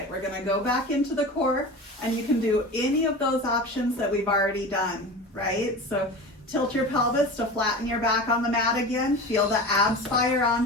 we're gonna go back into the core, and you can do any of those options that we've already done, right? So tilt your pelvis to flatten your back on the mat again. Feel the abs fire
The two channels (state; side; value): normal; both; correlation 0.31